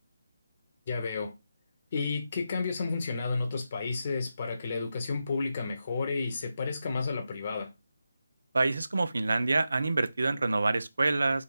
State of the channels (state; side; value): inverted; both; correlation -0.88